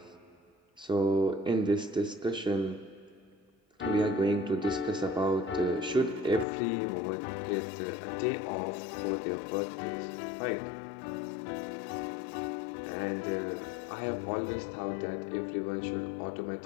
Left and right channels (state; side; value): drops out; right; at 6.5 s